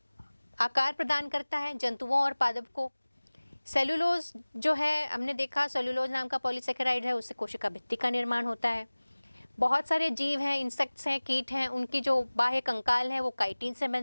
आकार प्रदान करता है जंतुओं और पादप को। सेलुलोज जो है हमने देखा, सेलुलोज नाम का पॉलीसेकेराइड है, उससे कोशिका भित्ति का निर्माण होता है। बहुत सारे जीव हैं, इंसेक्ट्स हैं, कीट हैं, उनकी जो बाह्य कंकाल है वो काइटिन से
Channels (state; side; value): inverted; both; correlation -1.00